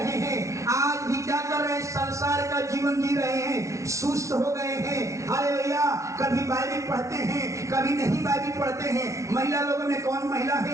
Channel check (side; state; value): left; late; 0.14 ms